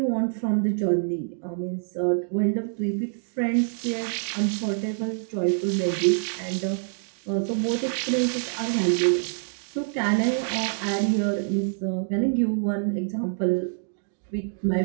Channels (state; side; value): silent; left; digital silence